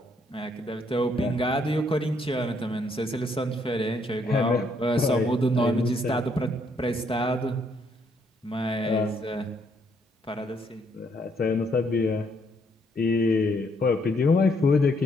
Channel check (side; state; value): both; normal; correlation 0.71